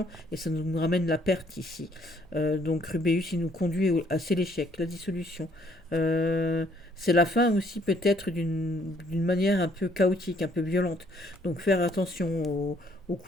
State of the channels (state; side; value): normal; both; correlation 0.65